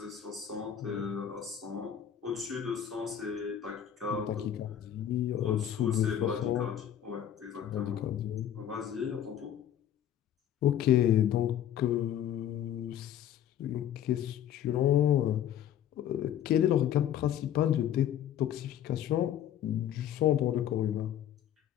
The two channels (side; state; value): right; quieter; 10.3 dB